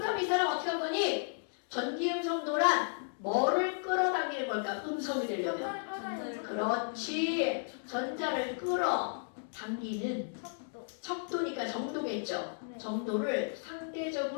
이 사람 어떻게 할 거니? 전기음성도란 뭐를 끌어당기는 걸까? 음성이 되려면. 전자를 끌어다니는 그렇지. 전자를 끌어당기는 척도. 척도니까 정도겠죠. 네. 정도를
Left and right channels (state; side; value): silent; right; digital silence